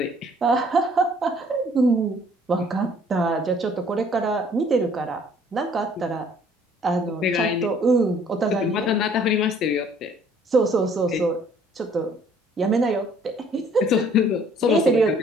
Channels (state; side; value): normal; both; correlation 0.58